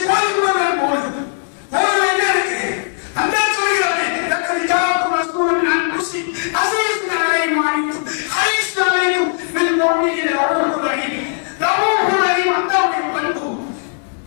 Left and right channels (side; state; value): right; silent; digital silence